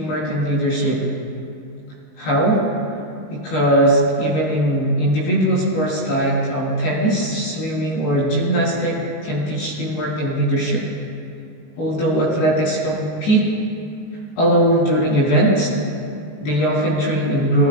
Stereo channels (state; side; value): late; right; 19 ms